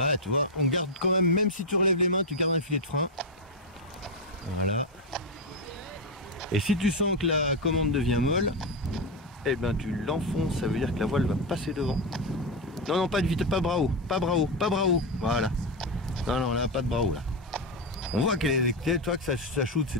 tu vois, on garde quand même si tu relèves les mains, tu gardes un filet de frein. Voilà. Et si tu sens que la commande devient molle, eh ben tu l'enfonces, ça veut dire que la voile va passer devant. Non, pas de vitesse, pas bravo. Voilà. Non, là, pas de bravo là. On voit qu'elle est, toi, que ça shoot,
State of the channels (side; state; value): both; normal; correlation 0.08